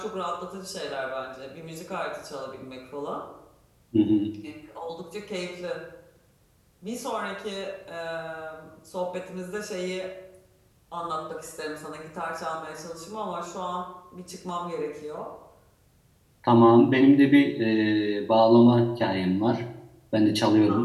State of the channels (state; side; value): identical; both; correlation 1.00